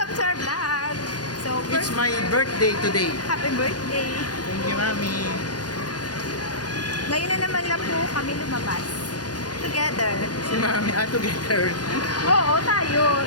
to our vlog! So, it's first, my birthday today. happy birthday! Thank you, Mami. Ngayon na naman lang po kami lumabas. Together. Si Mami, together. Oo, tayo.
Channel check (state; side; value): late; right; 0.69 ms